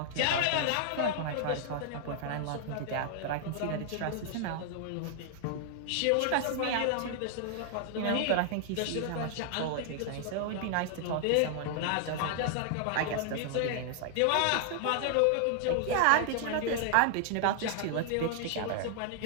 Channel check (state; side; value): different; both; correlation 0.00